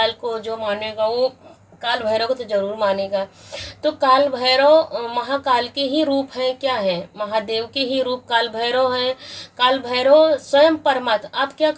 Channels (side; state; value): both; identical; correlation 1.00